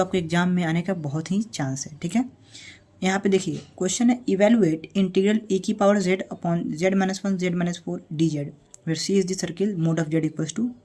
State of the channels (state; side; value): identical; both; correlation 1.00